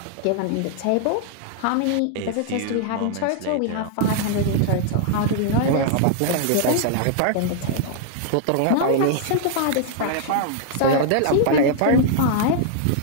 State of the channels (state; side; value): different; both; correlation 0.00